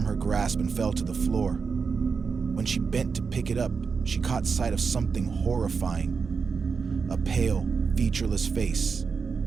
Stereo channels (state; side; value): quieter; left; 5.4 dB